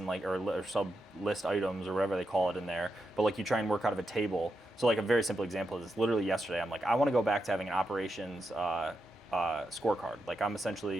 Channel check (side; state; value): both; normal; correlation 0.86